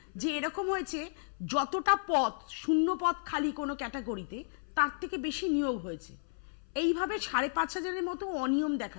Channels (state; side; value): silent; right; 56 dB below the other